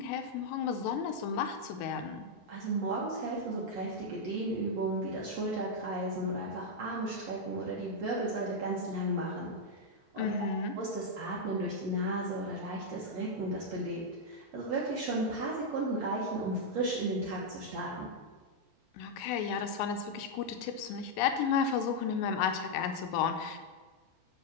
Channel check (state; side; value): normal; both; correlation -0.02